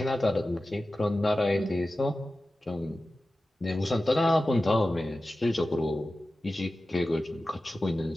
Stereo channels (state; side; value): normal; both; correlation 0.95